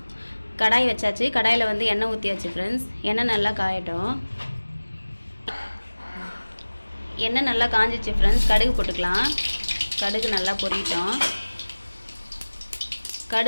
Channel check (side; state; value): both; inverted; correlation -1.00